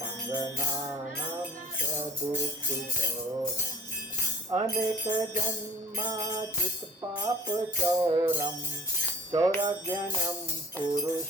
चोरम अनेक जन्माचित पाप चौरम चौरज्ञानम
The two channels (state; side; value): normal; both; correlation 0.49